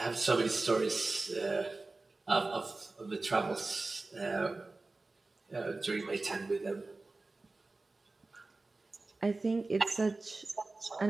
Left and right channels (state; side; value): quieter; left; 3.4 dB